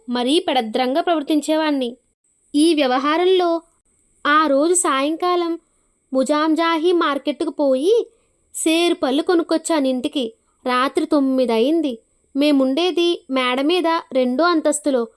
మరీ పెడద్రంగా ప్రవర్తించేవాణ్ణి. ఈ వ్యవహారంలో ఆ రోజు సాయంకాలం ముజాంజాహీ మార్కెట్కు పోయి సేరు పళ్ళు కొనుక్కొచ్చాను ఇంటికి. రాత్రి 9 అయింది. మేముండేది మేడ మీద 2వ అంతస్తులో.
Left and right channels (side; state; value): both; identical; correlation 1.00